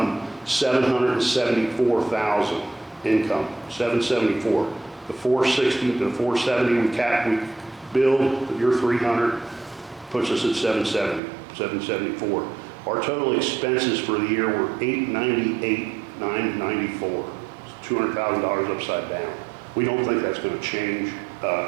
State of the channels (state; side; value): drops out; left; at 11.2 s